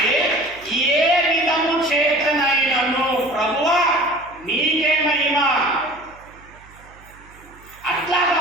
ఏ విధము చేతనైనను ప్రభువా నీకే మహిమ. అట్లాగా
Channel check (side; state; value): right; noise; hum, 24 dB below the sound